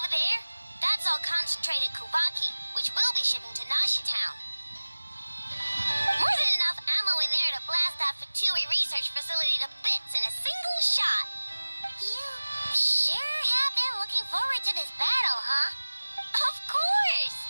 there? That's all concentrated Kuvaki, which we'll be shipping to Nashi Town.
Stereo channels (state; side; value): inverted; both; correlation -1.00